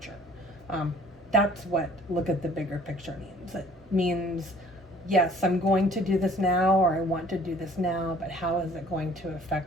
That's what look at the bigger picture means. It means, yes, I'm going to do this now, or I want to do this now, but how is it going to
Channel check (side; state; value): both; normal; correlation 0.54